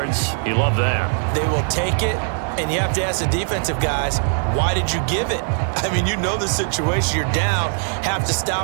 You love that. They will take it, and you have to ask the defensive guys, why did you give it? I mean, you know the situation. You're down, have to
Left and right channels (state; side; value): silent; left; digital silence